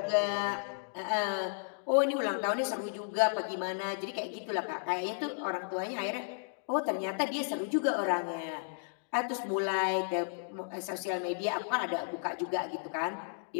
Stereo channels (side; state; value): right; silent; digital silence